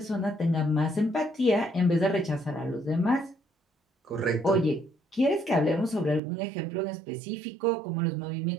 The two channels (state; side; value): drops out; left; at 6.2 s